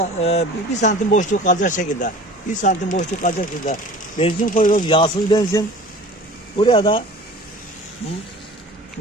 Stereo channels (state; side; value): normal; both; correlation 0.42